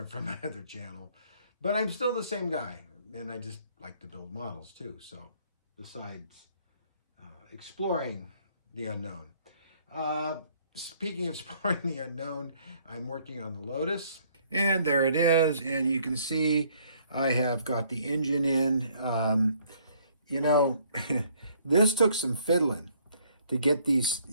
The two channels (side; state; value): both; inverted; correlation -0.63